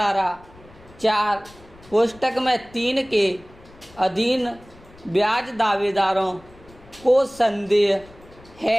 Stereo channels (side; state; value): left; noise; rumble, 24 dB below the sound